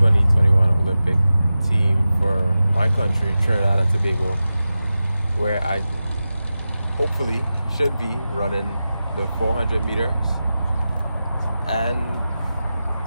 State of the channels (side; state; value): both; inverted; correlation -0.93